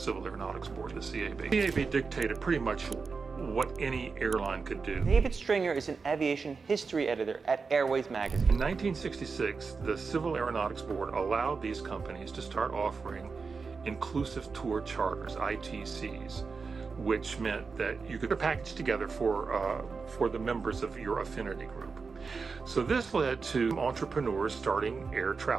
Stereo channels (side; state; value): left; quieter; 4.8 dB